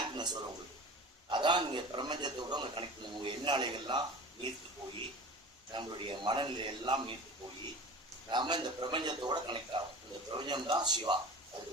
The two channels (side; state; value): both; normal; correlation 0.36